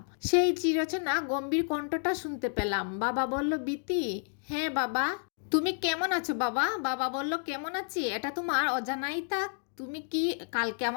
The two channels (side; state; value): right; silent; 57 dB below the other